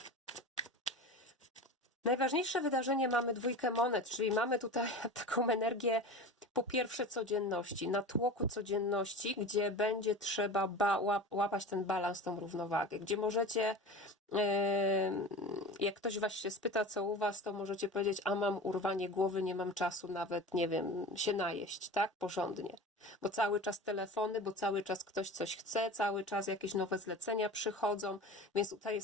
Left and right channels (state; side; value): normal; both; correlation 0.33